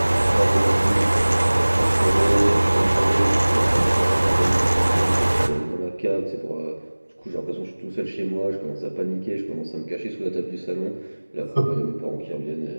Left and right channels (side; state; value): both; inverted; correlation -1.00